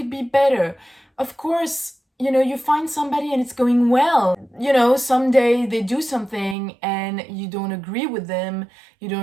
be better. Of course, you find somebody and it's going well. Someday they do something and you don't agree with them, you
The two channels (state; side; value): drops out; left; at 6.6 s